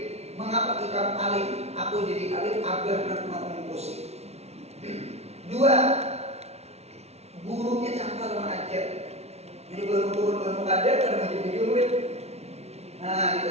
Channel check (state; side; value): late; left; 0.31 ms